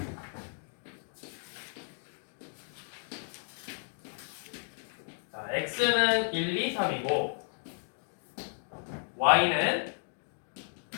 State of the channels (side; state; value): right; silent; 55 dB below the other